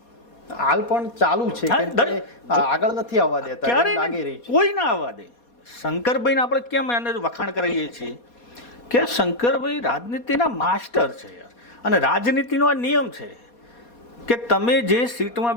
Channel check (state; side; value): late; right; 4.2 ms